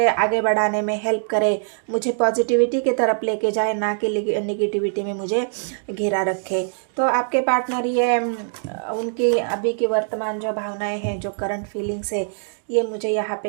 आगे बढ़ाने में हेल्प करे, मुझे पॉजिटिविटी की तरफ लेके जाए, ना कि निगेटिविटी में मुझे घिरा रखे। तो आपके पार्टनर ये उनकी अभी की वर्तमान जो भावनाएं हैं, जो करंट फीलिंग्स है, ये मुझे यहाँ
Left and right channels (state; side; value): silent; left; digital silence